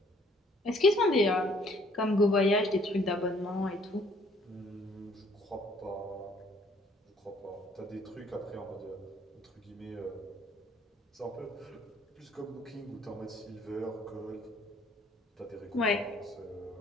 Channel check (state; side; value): normal; both; correlation 0.61